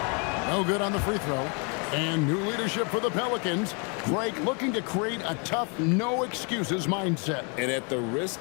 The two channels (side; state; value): right; quieter; 35.2 dB